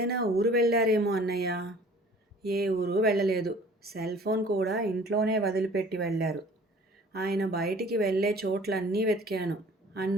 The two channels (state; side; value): normal; both; correlation 0.50